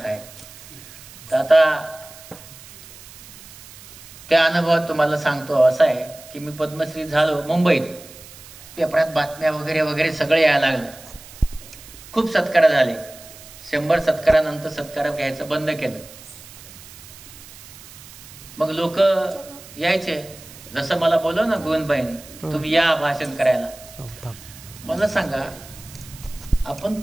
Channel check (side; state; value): right; noise; hiss, 18 dB below the sound